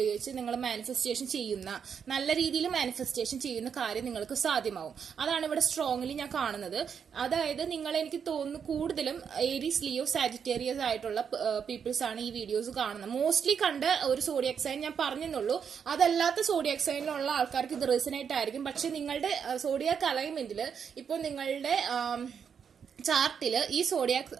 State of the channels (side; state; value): left; quieter; 7.1 dB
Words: നിങ്ങൾ മാനിഫെസ്റ്റേഷൻ ചെയ്യുന്ന, നല്ല രീതിയിൽ മാനിഫെസ്റ്റേഷൻ ചെയ്യുന്ന കാര്യം നിങ്ങൾക്ക് സാധ്യമാവും. അതാണ് ഇവിടെ സ്ട്രോങ്ലി ഞാൻ കാണുന്നത്. അതായത് നിങ്ങൾ, എനിക്ക് തോന്നുന്നു കൂടുതലും ഏരീസ്, ലിയോ, സാജിറ്റേറിയസ് ആയിട്ടുള്ള പീപ്പിൾസ് ആണ് ഈ വീഡിയോസ് കാണുന്നത്. മോസ്റ്റ്ലി കണ്ട ഒരു സോഡിയാക് സൈൻ ഞാൻ പറഞ്ഞെന്നുള്ളൂ, അതല്ലാത്ത സോഡിയാക് സൈനിലുള്ള ആൾക്കാർക്ക് ഇത് റെസനേറ്റ് ആയിരിക്കും. പക്ഷെ നിങ്ങളുടെ സോഡിയാക് അലൈൻമെന്റിൽ ഇപ്പോൾ നിങ്ങളുടെ ചാർട്ടില് ഈ സോഡിയാക്